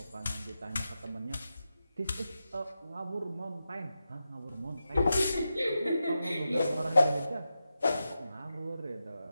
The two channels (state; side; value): inverted; both; correlation -0.90